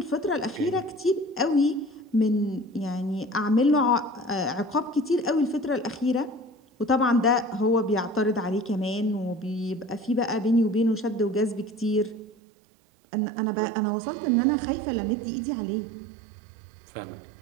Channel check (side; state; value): left; drops out; at 12.4 s